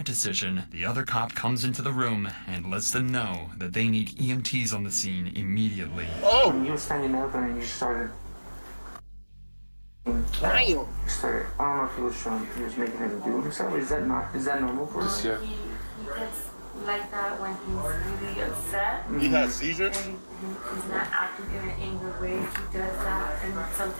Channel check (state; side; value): inverted; both; correlation -1.00